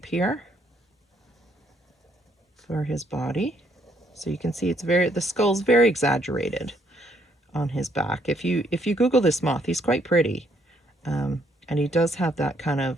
here for his body. So you can see it's the skull's very exaggerated on his back. If you Google this moth, he's quite pretty. And he does have that kind of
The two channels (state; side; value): normal; both; correlation 0.69